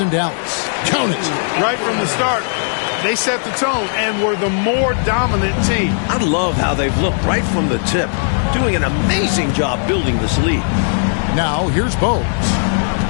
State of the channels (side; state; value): right; silent; 64 dB below the other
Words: Dallas. Count it. Right from the start, they set the tone and were the more dominant team. I love how they've looked right from the tip, doing an amazing job building this lead. Now here's Bogues.